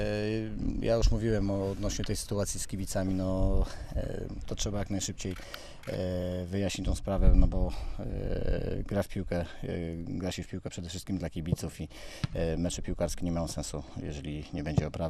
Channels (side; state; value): both; identical; correlation 1.00